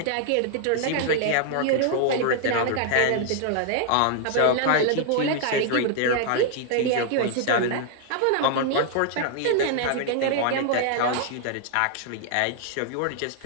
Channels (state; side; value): different; both; correlation 0.00